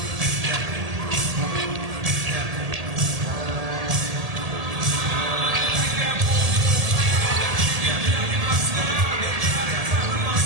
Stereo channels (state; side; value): late; left; 1.8 ms